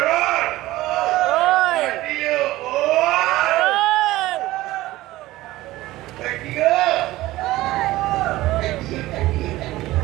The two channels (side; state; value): left; quieter; 17.2 dB